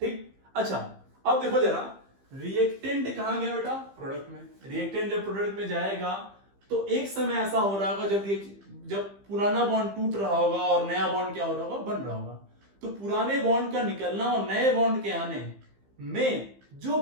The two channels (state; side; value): late; left; 15 ms